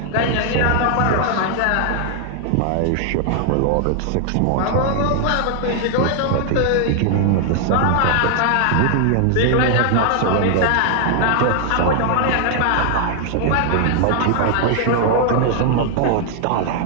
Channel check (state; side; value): different; both; correlation 0.00